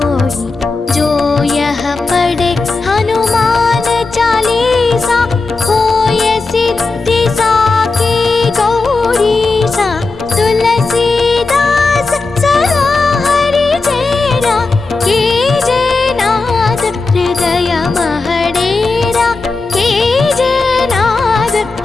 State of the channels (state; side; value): quieter; right; 3.8 dB